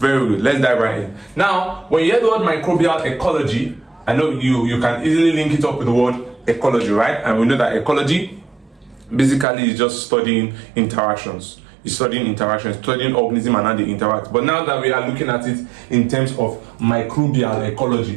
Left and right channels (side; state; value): left; drops out; at 9.5 s